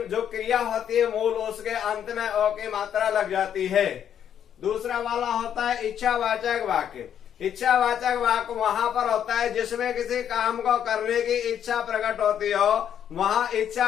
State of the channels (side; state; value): right; quieter; 9.2 dB